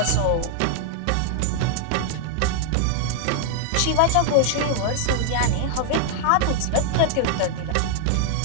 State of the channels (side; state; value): both; different; correlation 0.00